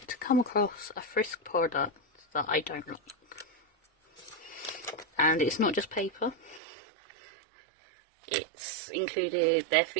to come across a Frisk product that I don't like. And it's not just paper. It's included their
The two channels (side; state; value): left; drops out; at 6.6 s